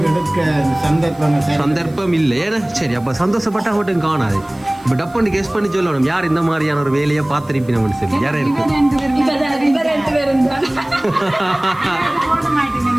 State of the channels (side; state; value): right; noise; hiss, 28 dB below the sound